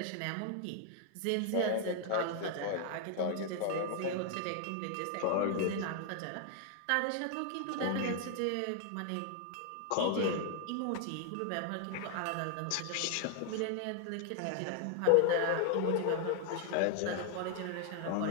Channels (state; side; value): different; both; correlation 0.00